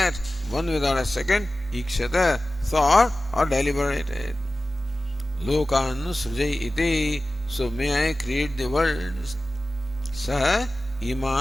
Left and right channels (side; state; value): both; normal; correlation 0.95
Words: one without a second, Ikshata, thought or deliberated. Lokanu Srujai iti, so may I create the worlds. Saha